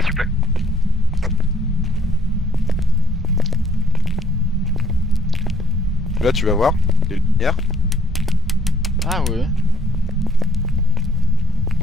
s'il vous plaît. Là tu vas voir, les lumières. Ah ouais.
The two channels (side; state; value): both; normal; correlation 0.63